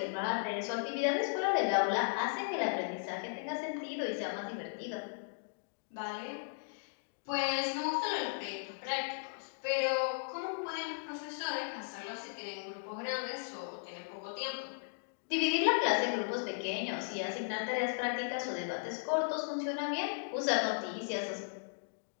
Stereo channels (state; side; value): silent; right; digital silence